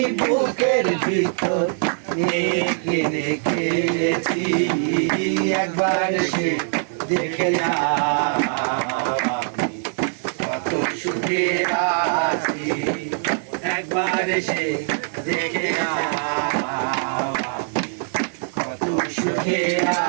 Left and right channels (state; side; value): silent; left; digital silence